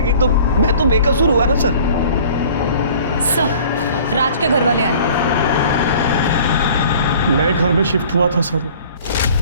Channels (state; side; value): inverted; both; correlation -0.49